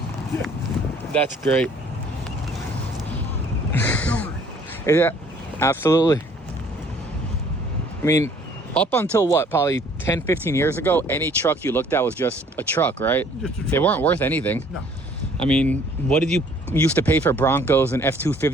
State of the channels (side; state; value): both; normal; correlation 0.58